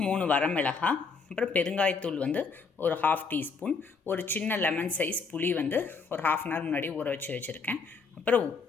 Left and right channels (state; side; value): quieter; right; 4.9 dB